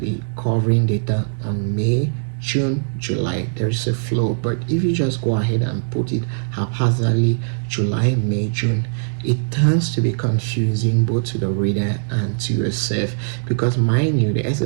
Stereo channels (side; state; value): left; silent; 62 dB below the other